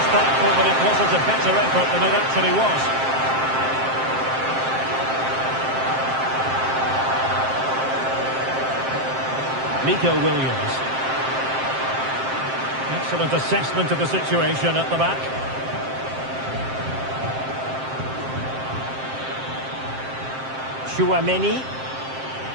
thankful that it wasn't a better effort than it actually was. Nico Williams. Excellent assessment of the situation at the back. Chouameni.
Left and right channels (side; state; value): left; late; 7.6 ms